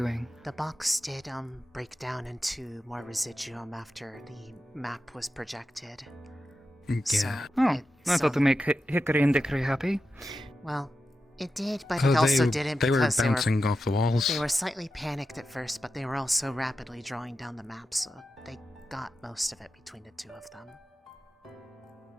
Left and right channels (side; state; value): both; normal; correlation 0.91